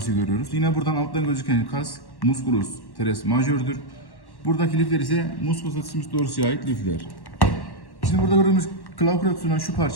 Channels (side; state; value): right; late; 1.1 ms